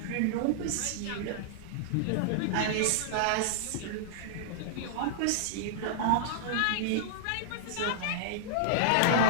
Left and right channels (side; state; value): both; different; correlation -0.01